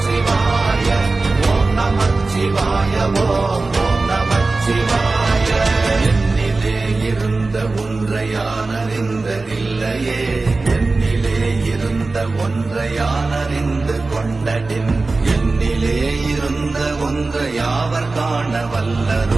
ஓம் நமச்சிவாய ஓம் ஓம் நமச்சிவாய. என்னிலே இருந்த ஒன்றை யானறிந்ததில்லையே, என்னிலே இருந்த ஒன்றை யானறிந்து கொண்டடின், என்னிலே இருந்த ஒன்றை யாவர் காண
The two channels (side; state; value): left; quieter; 3.5 dB